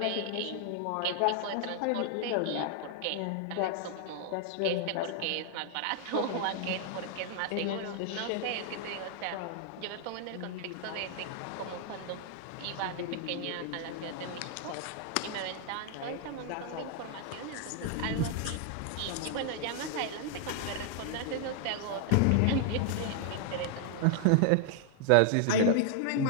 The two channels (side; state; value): both; different; correlation 0.00